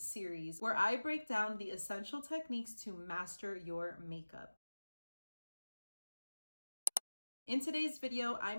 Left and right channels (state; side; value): inverted; both; correlation -1.00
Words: where I break down the essential techniques to master your makeup. In today's video,